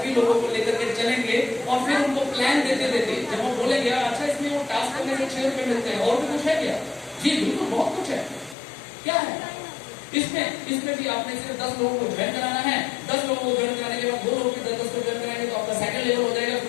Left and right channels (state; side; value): drops out; right; at 8.6 s